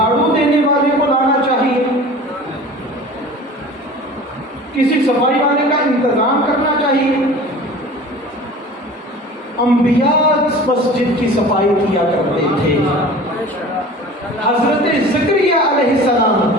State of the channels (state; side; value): normal; both; correlation 0.40